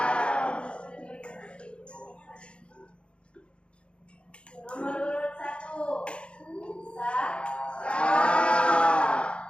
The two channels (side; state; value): right; late; 0.057 ms